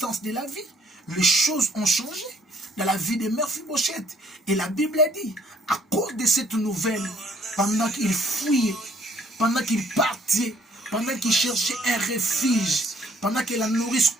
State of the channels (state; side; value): normal; both; correlation 0.63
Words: de la vie. Les choses ont changé dans la vie de Mephibosheth. Et la Bible dit, à cause de cette nouvelle, pendant qu'il fouillait, pendant qu'il partait, pendant qu'il cherchait un refuge, pendant que la nourrice